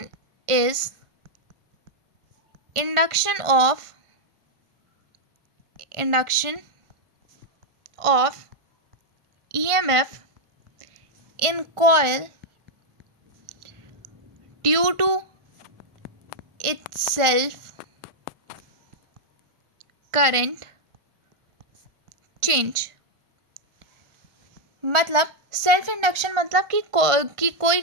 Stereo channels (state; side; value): late; left; 1.4 ms